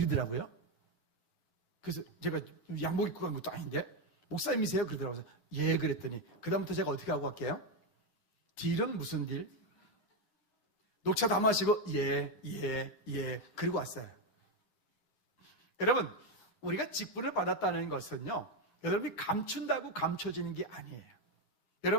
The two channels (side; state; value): right; late; 9.7 ms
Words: 그래서 제가 양복 입고 간 것도 아닌데 목사님이세요? 그러더라고요. 예, 그랬더니 그다음부터 제가 어떻게 하고 갈게요? 딜은 무슨 딜? 녹차 다 마시고 예 그리고 왔어요. 여러분, 우리가 직분을 받았다는 것은요, 여러분이 감춘다고 감춰지는 게 아니에요.